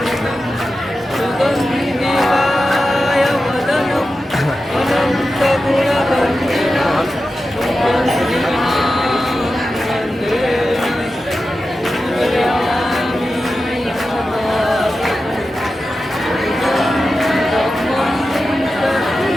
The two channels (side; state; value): both; normal; correlation 0.92